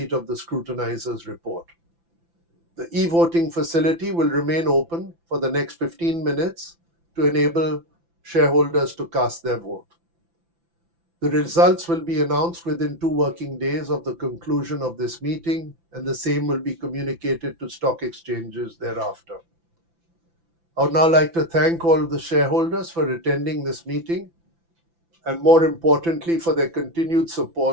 of the scrutinizer's report. The e-voting facility will remain open for the next 15 minutes to enable shareholders to cast their vote. The results will be announced within 2 working days of the conclusion of this meeting, and the same will be communicated to stock exchanges thereafter. I would now like to thank all the shareholders for attending this meeting, and more importantly, for their continued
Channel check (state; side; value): late; left; 5.9 ms